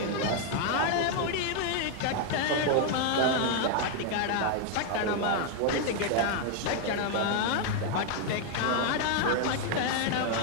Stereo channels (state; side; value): different; both; correlation 0.00